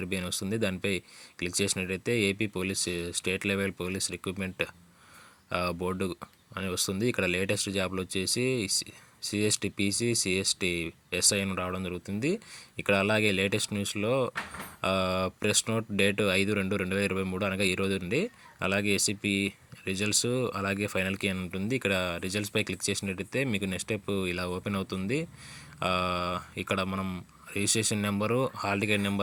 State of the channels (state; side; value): identical; both; correlation 1.00